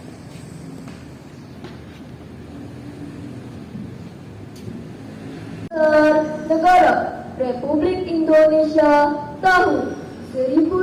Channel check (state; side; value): identical; both; correlation 1.00